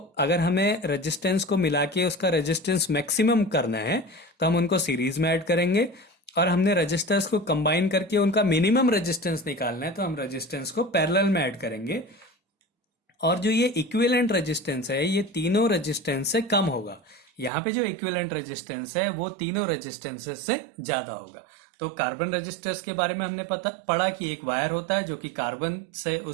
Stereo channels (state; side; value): drops out; left; at 17.5 s